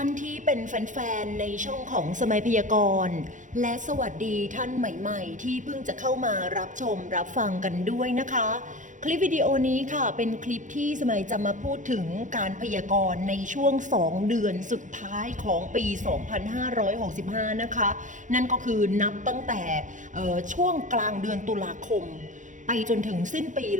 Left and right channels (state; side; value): late; left; 0.37 ms